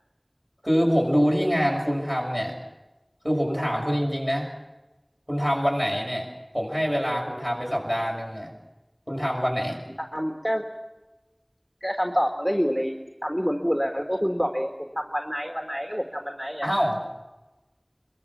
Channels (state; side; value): identical; both; correlation 1.00